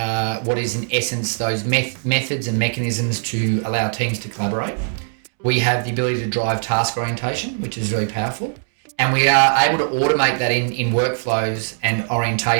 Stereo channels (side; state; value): left; silent; 65 dB below the other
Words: what is in essence those methods and mechanisms to allow teams to collaborate. We have the ability to drive task orientation, which is really powerful. And we are able to automate that in workflows and